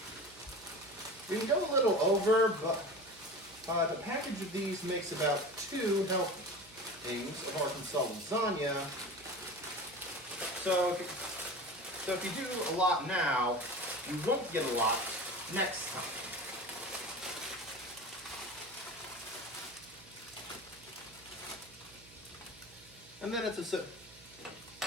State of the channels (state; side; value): noise; right; hum, 23 dB below the sound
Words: We can go a little over, but a package of these makes about 2 helpings of Arkansas lasagna. So if you do a lot now, you won't get a lot next time. And then it's a